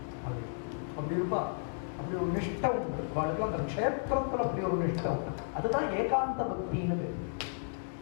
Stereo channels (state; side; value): silent; right; digital silence